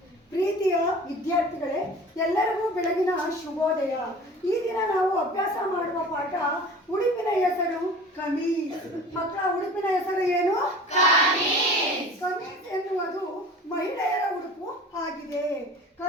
ಪ್ರೀತಿಯ ವಿದ್ಯಾರ್ಥಿಗಳೇ, ಎಲ್ಲರಿಗೂ ಬೆಳಗಿನ ಶುಭೋದಯ. ಈ ದಿನ ನಾವು ಅಭ್ಯಾಸ ಮಾಡುವ ಪಾಠ ಉಡುಪಿನ ಹೆಸರು ಕಮೀಜ್. ಮಕ್ಕಳ, ಉಡುಪಿನ ಹೆಸರು ಏನು? ಕಮೀಜ್ ಎನ್ನುವುದು ಮಹಿಳೆಯರ ಉಡುಪು ಆಗಿದೆ.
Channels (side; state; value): both; normal; correlation 0.41